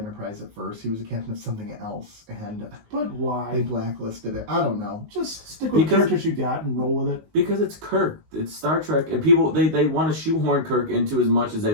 at first? He was a captain of something else, and but why? they blacklisted it. I don't know. Just stick with the characters you got and roll with it. Because it's Kirk. It's Star Trek, and people they want to shoehorn Kirk into as much as they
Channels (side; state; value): left; late; 19 ms